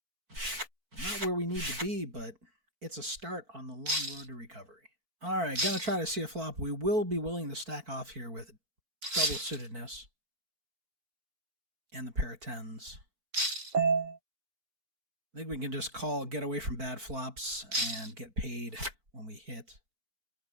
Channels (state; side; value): late; left; 4.5 ms